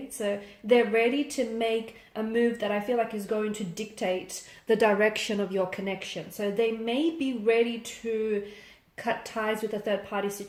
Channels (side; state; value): both; identical; correlation 1.00